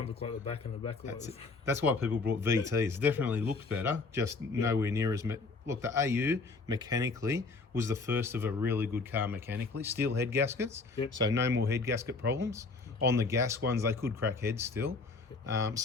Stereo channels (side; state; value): right; quieter; 4.0 dB